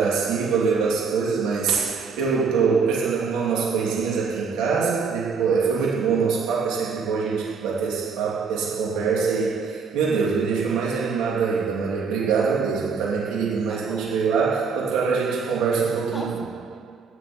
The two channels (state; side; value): quieter; left; 5.3 dB